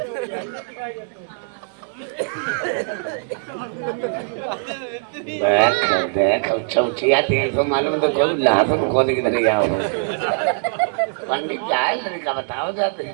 देख चौथिया देखो, मालूम तो खोल लाभ खोद किधर जाओ। पंडित जाए लड़का बताओ जाते।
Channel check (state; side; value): silent; left; digital silence